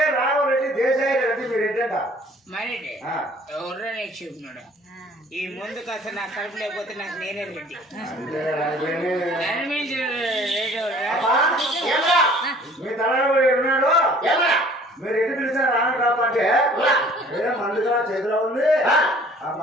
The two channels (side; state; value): both; normal; correlation 0.53